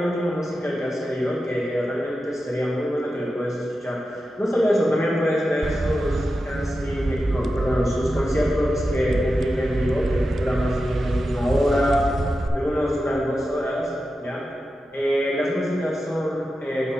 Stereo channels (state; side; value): normal; both; correlation 0.91